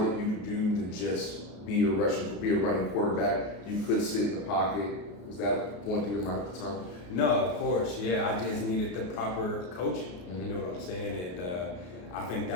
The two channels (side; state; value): right; late; 33 ms